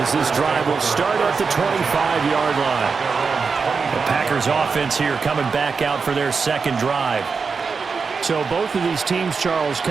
this drive will start at the 25-yard line. The Packers offense here coming back out for their second drive. So both of these teams, Charles,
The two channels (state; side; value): quieter; left; 5.1 dB